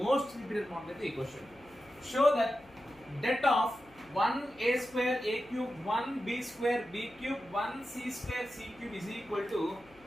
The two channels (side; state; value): left; noise; hum, 28 dB below the sound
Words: మోస్ట్ రిపీటెడ్ మోడల్ అయితే ఈ question. Show that det of 1a square a cube 1b square b cube 1c square c cube is equal to